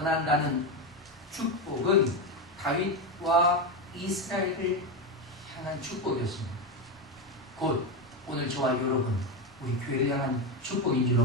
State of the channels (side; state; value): both; normal; correlation 0.12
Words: 축복은 다윗과 이스라엘을 향한 축복이었습니다. 곧 오늘 저와 여러분 우리 교회를 향한 축복인